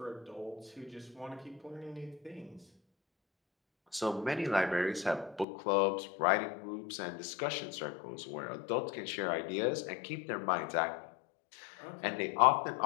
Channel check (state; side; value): drops out; right; at 5.5 s